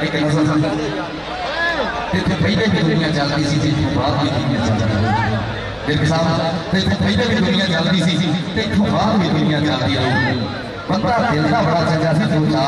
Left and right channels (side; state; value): both; identical; correlation 1.00